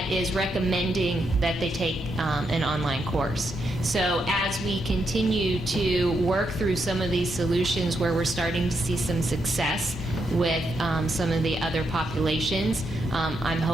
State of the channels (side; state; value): both; normal; correlation 0.81